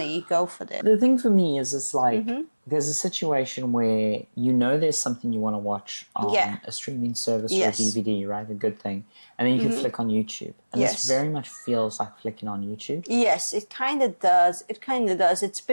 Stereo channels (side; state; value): both; inverted; correlation -1.00